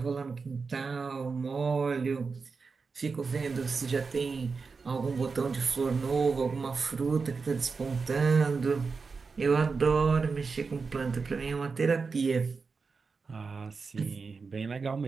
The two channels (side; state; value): left; quieter; 4.8 dB